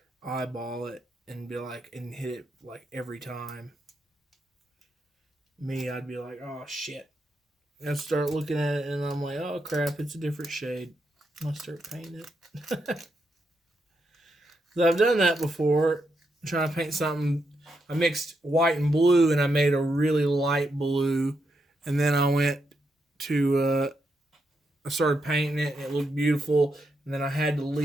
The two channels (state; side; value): normal; both; correlation 0.82